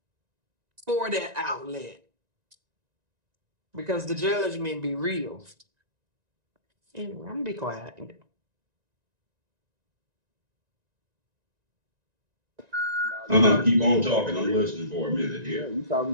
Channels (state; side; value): late; left; 1.9 ms